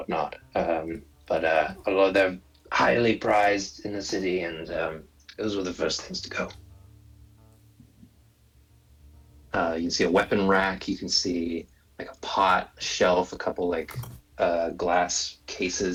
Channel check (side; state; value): both; identical; correlation 1.00